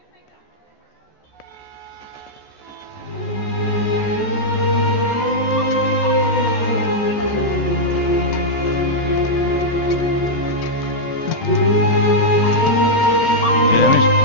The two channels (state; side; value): late; right; 14 ms